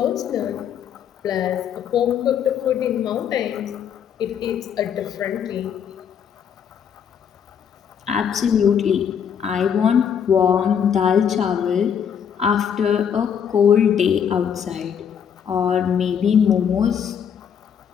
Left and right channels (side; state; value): right; quieter; 8.0 dB